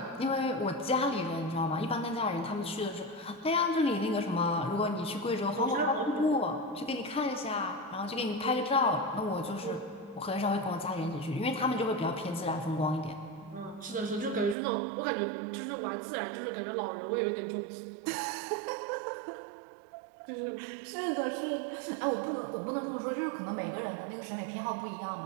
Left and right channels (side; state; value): left; drops out; at 14.6 s